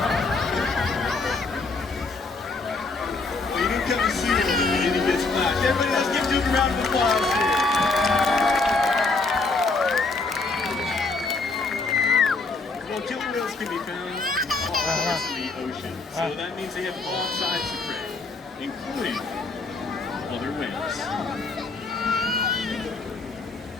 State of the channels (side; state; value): right; quieter; 3.8 dB